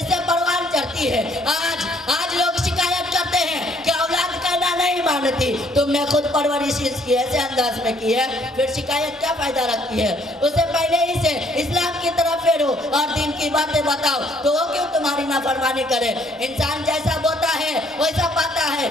سے پروان چڑھتی ہے آج لوگ شکایت کرتے ہیں کہ اولاد کہنا نہیں مانتی تم نے خود پرورش اس کی ایسے انداز میں کی ہے پھر شکایت کیا فائدہ رکھتی ہے اسے پہلے ہی سے اسلام کی طرف پھیرو اور دین کی باتیں بتاؤ تو وہ کیوں تمہاری نافرمانی کرے انسان جیسا بوتا ہے ویسا پاتا ہے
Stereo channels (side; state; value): both; normal; correlation 0.64